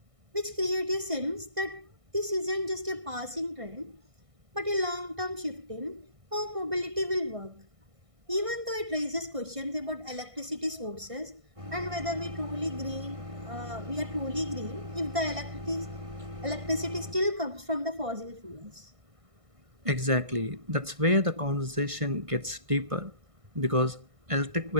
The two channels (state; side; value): late; left; 1.6 ms